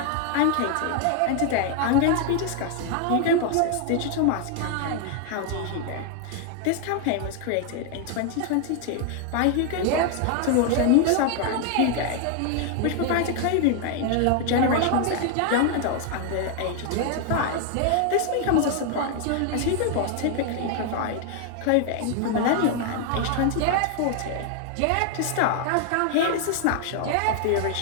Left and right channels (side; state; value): both; different; correlation 0.00